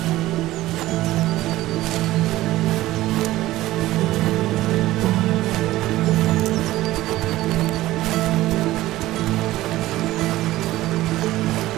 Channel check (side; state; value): left; quieter; 16.3 dB